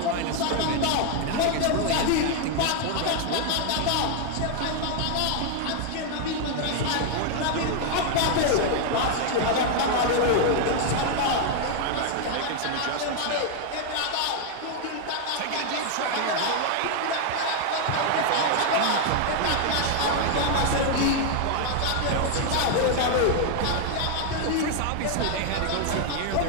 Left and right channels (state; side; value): different; both; correlation 0.00